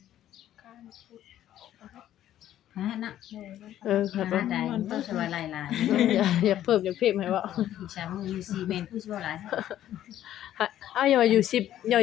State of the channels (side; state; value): right; quieter; 12.1 dB